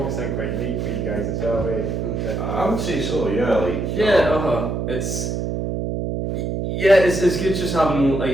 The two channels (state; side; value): noise; right; hum, 2 dB below the sound